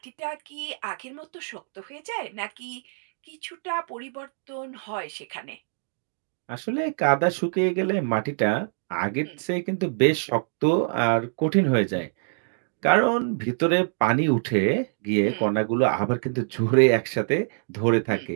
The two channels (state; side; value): silent; left; digital silence